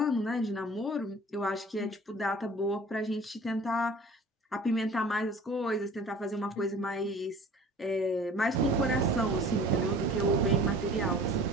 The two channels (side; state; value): both; normal; correlation 0.46